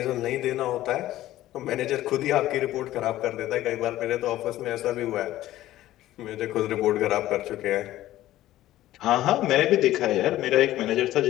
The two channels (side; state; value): right; quieter; 14.7 dB